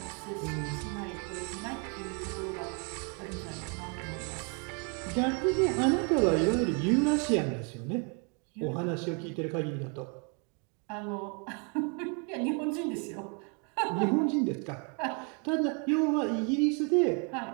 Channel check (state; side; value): quieter; left; 36.5 dB